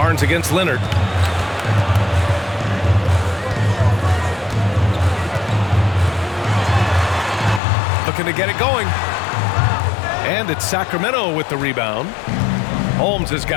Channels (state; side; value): drops out; right; at 7.6 s